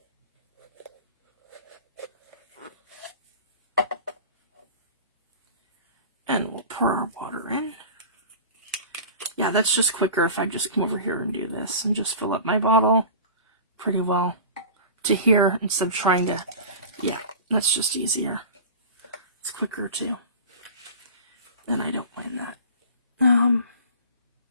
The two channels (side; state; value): both; inverted; correlation -0.36